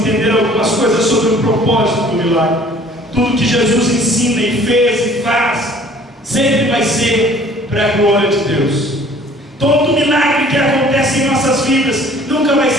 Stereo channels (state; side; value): normal; both; correlation 0.53